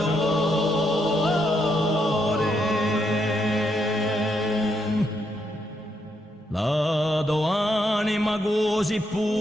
la do anima così pura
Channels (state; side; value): normal; both; correlation 0.78